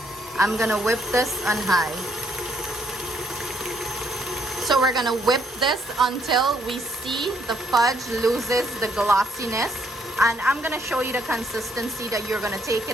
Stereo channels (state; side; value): normal; both; correlation 0.70